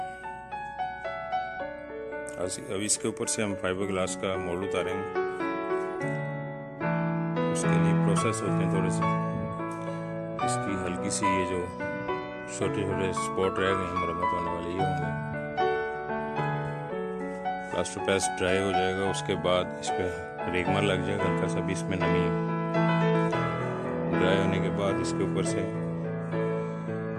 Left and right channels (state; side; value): identical; both; correlation 1.00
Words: अब इसके ऊपर से हम फाइबर ग्लास का मोल्ड उतारेंगे। उसके लिए प्रोसेस होते हैं थोड़े से, इसकी हल्की सी ये जो छोटे छोटे स्पॉट रह गए मरम्मत होने वाले ये होंगे। प्लास्टर पेस्ट ड्राई हो जाएगा, उसके बाद इस पर रेगमार लग जाएगा हल्का सा भी, इसमें नमी ड्राई होने के बाद इसके ऊपर से